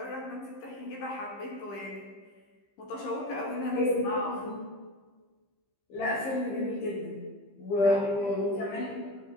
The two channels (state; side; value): late; right; 15 ms